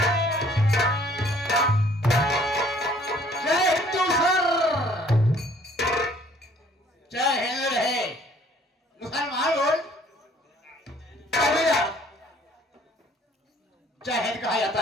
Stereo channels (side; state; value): both; normal; correlation 0.58